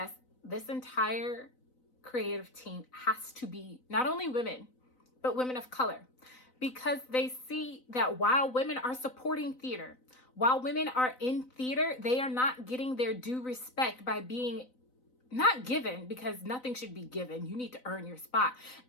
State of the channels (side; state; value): right; late; 4.0 ms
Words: this entire creative team has to be not only women, but women of color, because they see that while women are supporting theater, while women are in theater, they are not getting their due respect by being not given, because nothing should be given. You need to earn your spot.